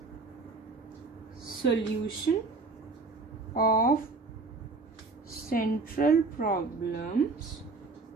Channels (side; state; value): left; quieter; 3.8 dB